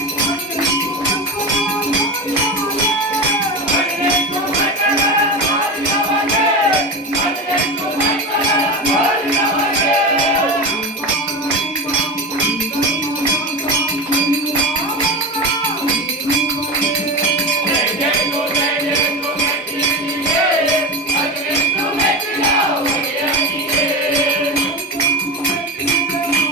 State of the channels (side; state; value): both; normal; correlation 0.23